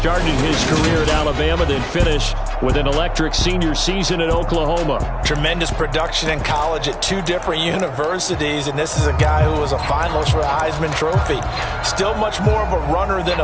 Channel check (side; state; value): both; identical; correlation 1.00